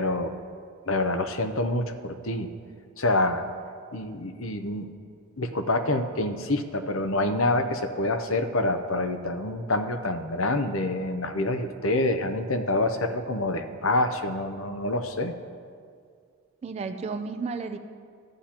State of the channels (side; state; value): both; normal; correlation -0.12